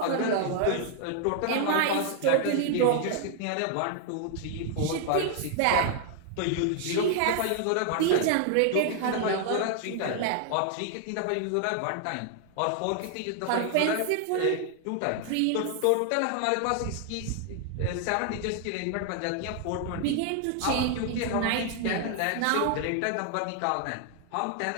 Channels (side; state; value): both; different; correlation 0.00